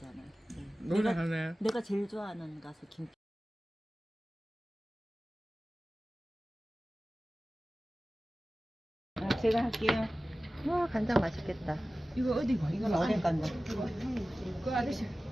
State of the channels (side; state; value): both; normal; correlation 0.96